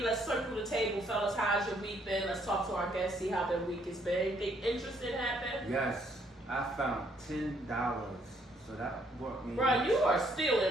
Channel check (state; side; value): normal; both; correlation 0.68